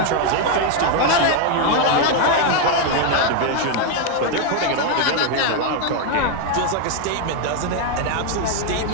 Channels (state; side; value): different; both; correlation 0.01